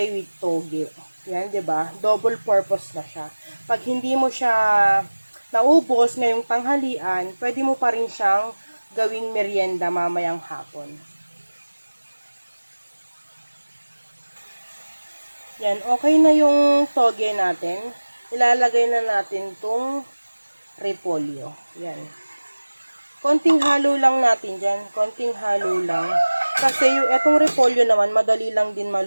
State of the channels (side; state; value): both; inverted; correlation -1.00